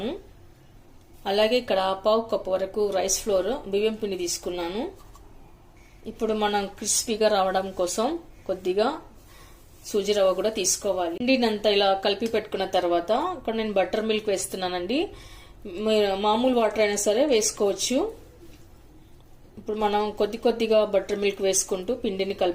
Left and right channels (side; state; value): both; identical; correlation 1.00